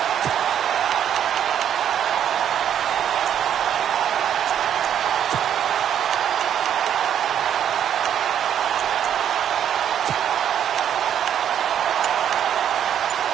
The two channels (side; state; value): left; quieter; 9.5 dB